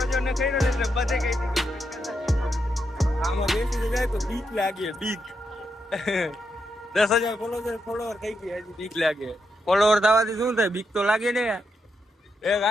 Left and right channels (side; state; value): both; normal; correlation 0.83